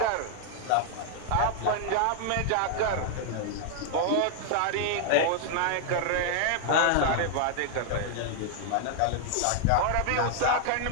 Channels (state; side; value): different; both; correlation 0.00